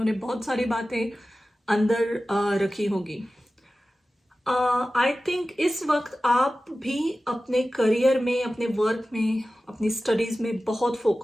बहुत सारी बातें अंदर रखी होगी। आई थिंक इस वक्त आप भी अपने करियर में, अपने वर्क में, अपनी स्टडीज में बहुत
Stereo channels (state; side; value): normal; both; correlation 0.95